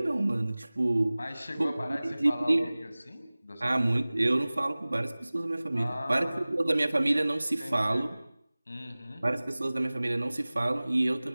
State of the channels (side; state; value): both; inverted; correlation -0.99